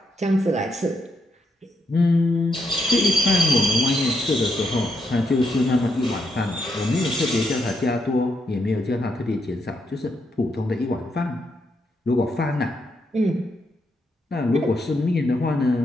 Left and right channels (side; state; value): both; normal; correlation 0.79